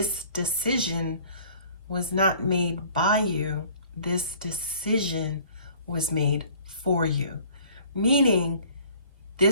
decision was not made by you. This decision was made for you. Meaning,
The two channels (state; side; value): inverted; both; correlation -0.53